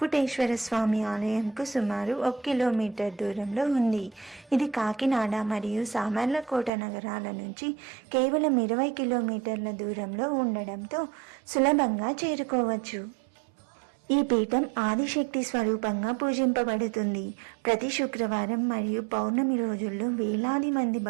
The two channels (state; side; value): drops out; left; at 6.7 s